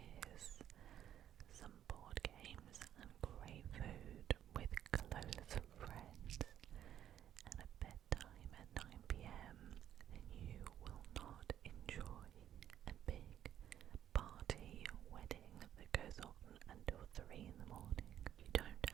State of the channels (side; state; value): left; quieter; 10.7 dB